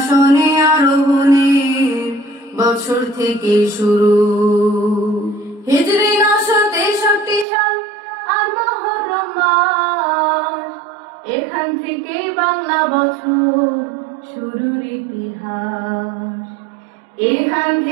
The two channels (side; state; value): left; drops out; at 7.5 s